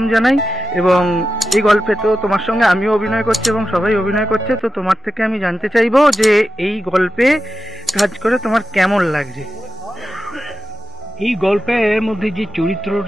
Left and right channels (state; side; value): normal; both; correlation 0.91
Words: জানাই এবং এই গল্পে তো তোমার সঙ্গে আমিও অভিনয় করছি এবং সবাই অভিনয় করছে, তো তোমার থেকে আমি জানতে চাইবো যে এই গল্পে কাজ করে তোমার কেমন লাগছে। এই গল্পের মধ্যে যে